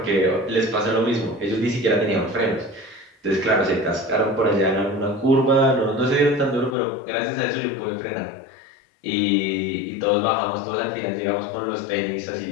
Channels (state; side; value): drops out; right; at 6.8 s